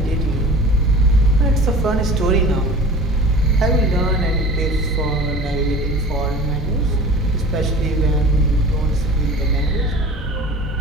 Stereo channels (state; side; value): normal; both; correlation 0.40